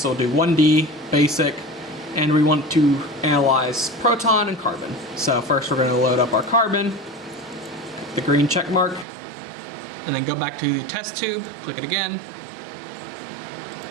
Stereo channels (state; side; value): drops out; left; at 9.1 s